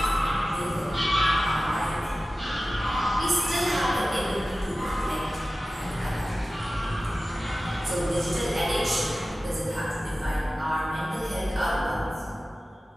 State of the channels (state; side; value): normal; both; correlation 0.95